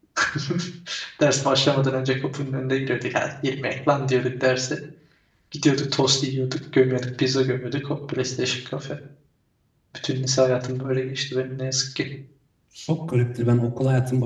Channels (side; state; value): both; identical; correlation 1.00